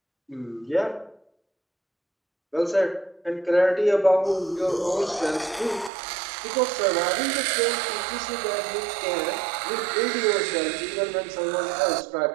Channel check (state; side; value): drops out; left; at 5.9 s